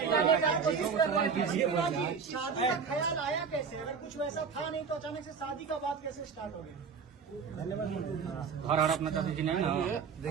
शादी का ख्याल आया कैसे? अगर कुछ वैसा था नहीं तो अचानक से शादी का बात कैसे स्टार्ट हो गया? हर अपना चाहती थी ना।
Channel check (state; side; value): quieter; left; 5.9 dB